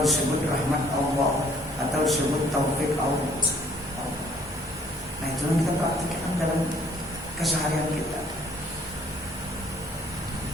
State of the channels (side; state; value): both; normal; correlation 0.61